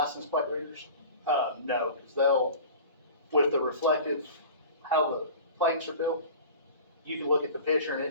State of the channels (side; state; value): both; inverted; correlation -0.39